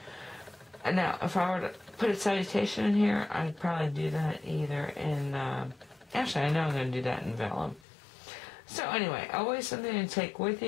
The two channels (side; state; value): right; drops out; at 7.8 s